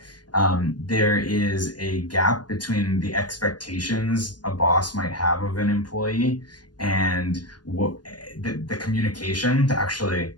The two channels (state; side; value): late; right; 0.69 ms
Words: There is a gap between the expectations a boss might have of an employee and what the communication to actually